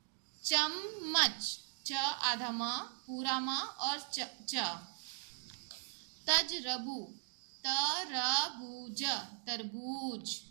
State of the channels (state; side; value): silent; left; digital silence